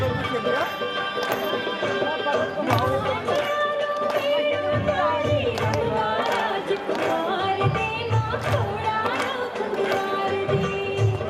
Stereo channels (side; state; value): both; identical; correlation 1.00